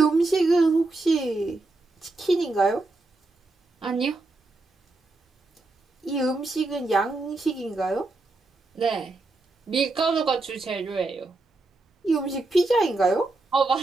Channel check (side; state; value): left; quieter; 3.2 dB